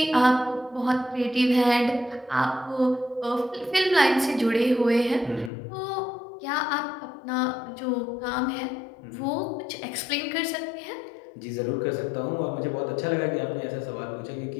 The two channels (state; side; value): drops out; right; at 5.5 s